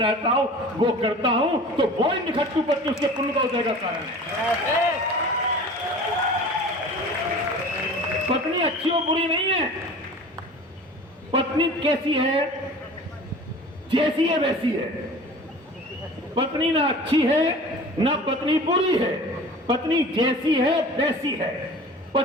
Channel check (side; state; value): both; normal; correlation 0.41